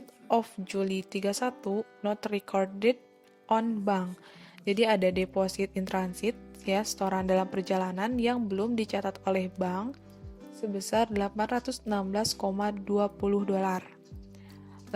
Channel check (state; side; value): identical; both; correlation 1.00